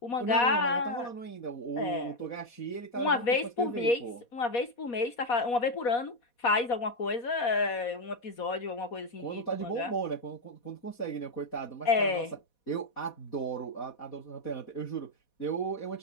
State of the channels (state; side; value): late; right; 4.2 ms